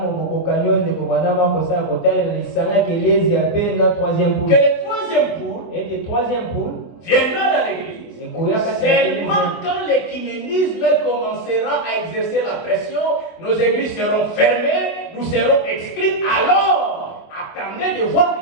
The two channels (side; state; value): right; late; 24 ms